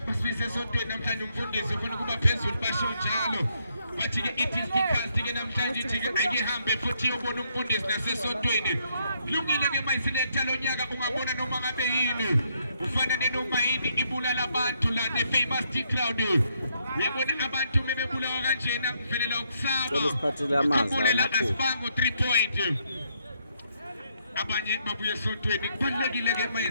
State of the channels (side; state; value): both; inverted; correlation -0.73